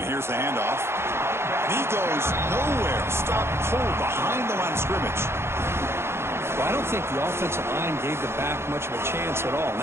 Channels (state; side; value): late; left; 0.12 ms